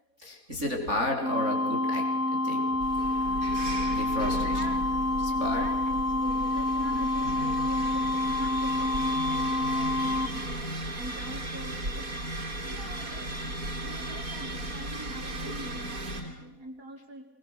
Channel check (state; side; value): late; left; 4.1 ms